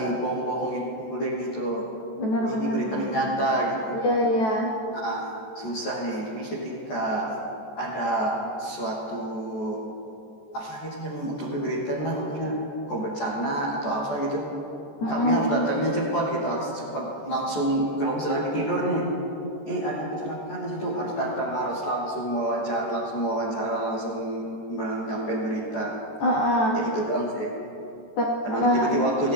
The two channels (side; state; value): right; late; 14 ms